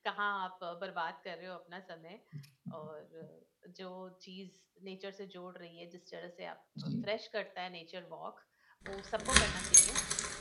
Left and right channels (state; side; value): identical; both; correlation 1.00